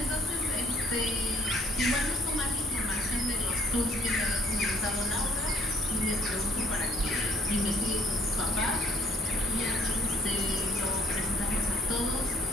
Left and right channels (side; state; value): both; normal; correlation 0.60